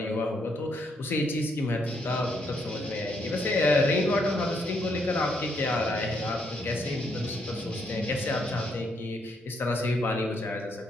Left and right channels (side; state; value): both; normal; correlation 0.74